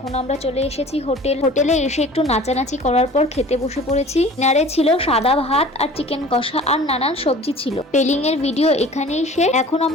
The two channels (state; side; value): normal; both; correlation 0.44